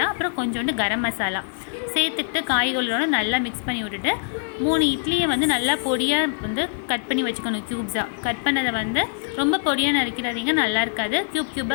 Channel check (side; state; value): right; silent; digital silence